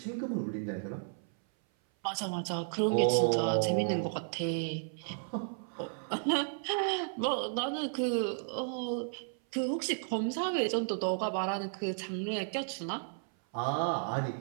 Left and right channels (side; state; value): left; silent; 56 dB below the other